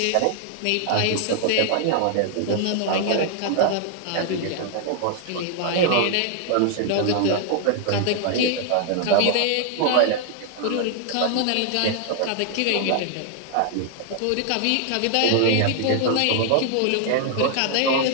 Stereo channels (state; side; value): different; both; correlation 0.00